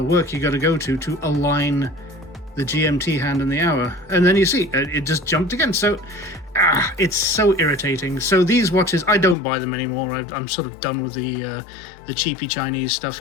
work you got to go to align the GMT hand and the hour. And then you see, it just jumped again. So, it's so irritating. So these watches, I don't buy them anymore. I'm sort of done with the cheapy Chinese stuff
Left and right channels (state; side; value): drops out; right; at 9.3 s